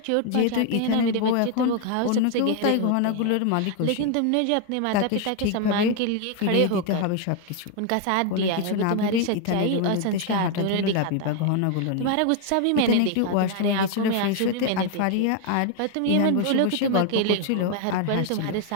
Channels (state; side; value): different; both; correlation 0.00